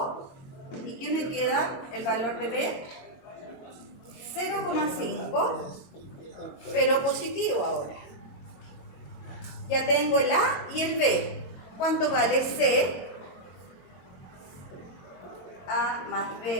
y ¿qué me queda? El valor de B 0,5, pero positivo ahora. Ya tengo el A y el B. ¿Cuánto vale C? A más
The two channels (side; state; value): right; late; 22 ms